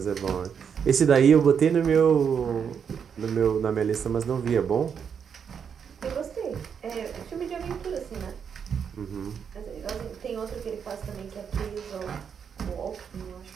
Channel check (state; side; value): quieter; left; 7.2 dB